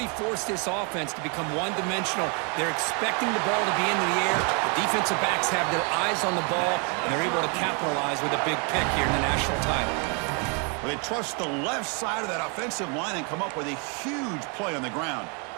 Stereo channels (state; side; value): quieter; left; 35.7 dB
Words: forced this offense to become one-dimensional. They're expecting the ball to be in the air. The defensive backs have their eyes on the ball, and they're able to capitalize with a big pick here in the national title. Well, they trust the left side of that offensive line and come up with a huge play on the ground.